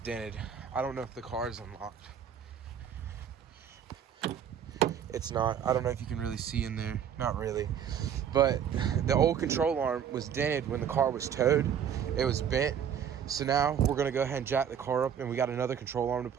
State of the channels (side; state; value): left; quieter; 8.5 dB